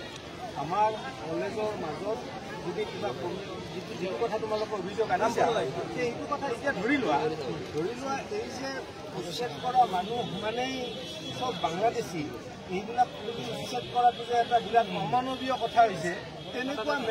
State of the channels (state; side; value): identical; both; correlation 1.00